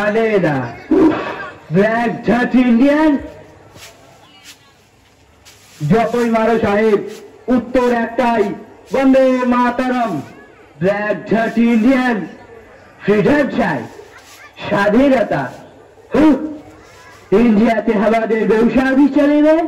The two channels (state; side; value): identical; both; correlation 1.00